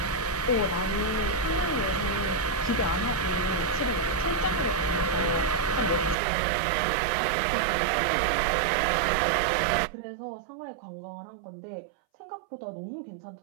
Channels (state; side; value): drops out; left; at 6.2 s